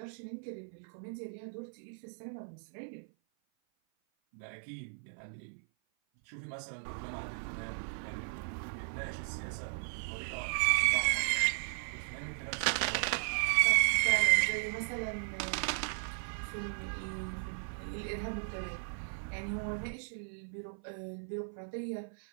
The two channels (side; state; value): left; silent; 54 dB below the other